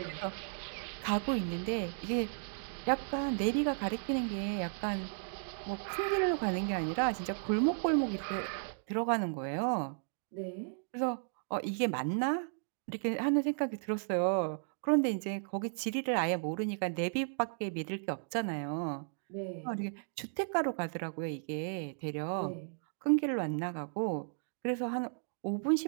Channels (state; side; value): silent; left; digital silence